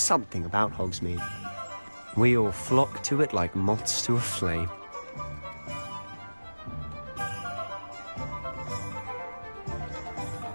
something about Hogsmeade. We all flock to it like moths to a flame.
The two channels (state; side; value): inverted; both; correlation -1.00